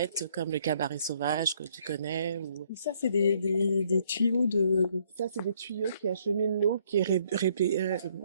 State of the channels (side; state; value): both; inverted; correlation -0.67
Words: comme le cabaret sauvage que tu connais. Ou... Ça, c'est des tuyaux de... Ça, c'est des tuyaux qui acheminent l'eau qui est